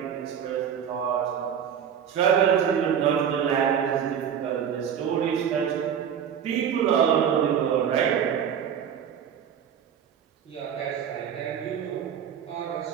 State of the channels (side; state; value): left; quieter; 8.4 dB